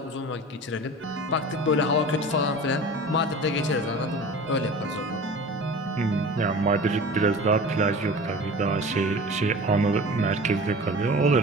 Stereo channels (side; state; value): both; normal; correlation 0.38